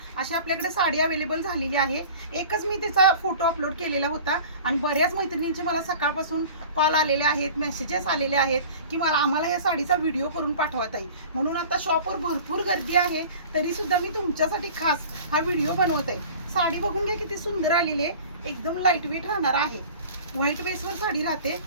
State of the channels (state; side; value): inverted; both; correlation -0.42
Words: अशी आपल्याकडे साडी अवेलेबल झालेली आहे। एकच मी त्याचा फोटो अपलोड केलेला होता आणि बऱ्याच मैत्रिणींचे मला सकाळपासून कॉल आलेले आहेत, मेसेजेस आलेले आहेत की आम्हाला या साडीचा व्हिडिओ करून पाठवा ताई। म्हणून आता शॉपवर भरपूर गर्दी आहे, तरी सुद्धा मी तुमच्यासाठी खास हा व्हिडिओ बनवत आहे। साडी बघून घ्या किती सुंदर आलेली आहे, एकदम लाईट वेट राहणार आहे। व्हाईट बेसवर साडी राहते,